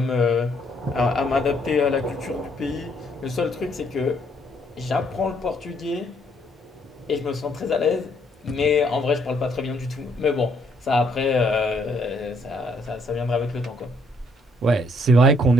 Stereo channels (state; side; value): normal; both; correlation 0.69